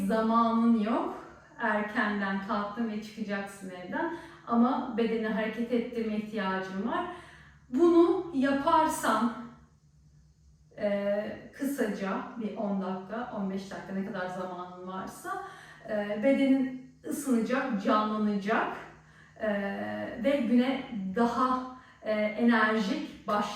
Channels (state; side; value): identical; both; correlation 1.00